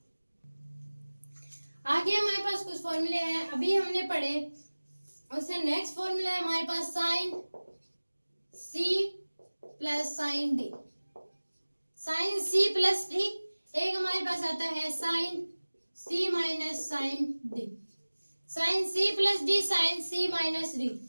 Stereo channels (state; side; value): inverted; both; correlation -1.00